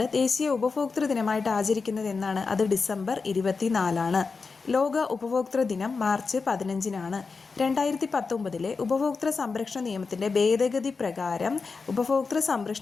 ദേശീയ ഉപഭോക്തൃ ദിനമായിട്ട് ആചരിക്കുന്നത് എന്നാണ്? അത് ഡിസംബർ 24-ആണ്. ലോക ഉപഭോക്തൃ ദിനം മാർച്ച് 15-നാണ്. 2019 ഉപഭോക്തൃ സംരക്ഷണ നിയമത്തിൻ്റെ ഭേദഗതി പ്രകാരം ഉപഭോക്തൃ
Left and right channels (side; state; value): right; quieter; 4.6 dB